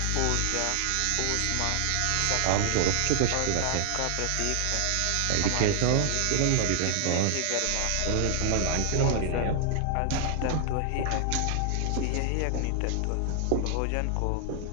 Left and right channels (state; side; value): different; both; correlation 0.00